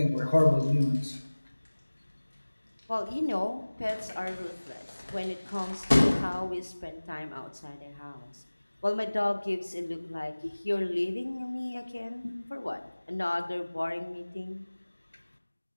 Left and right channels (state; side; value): inverted; both; correlation -1.00